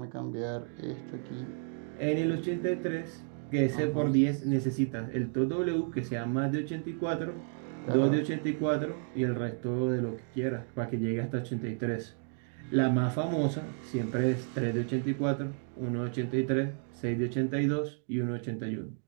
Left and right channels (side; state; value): left; silent; 55 dB below the other